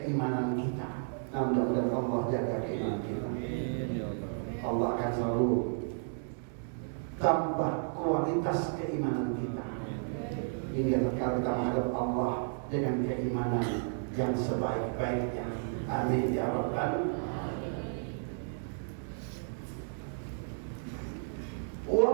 kita. Mudah-mudahan Allah jaga keimanan kita. Allah akan selalu tambah kualitas keimanan kita. Ini adalah kita menghadap Allah dengan keimanan yang sebaik-baiknya. Amin ya Rabbal. Wa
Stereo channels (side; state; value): left; silent; digital silence